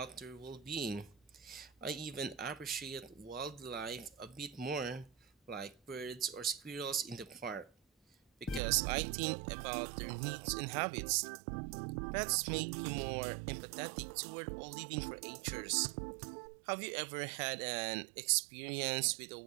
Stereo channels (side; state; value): left; drops out; at 8.6 s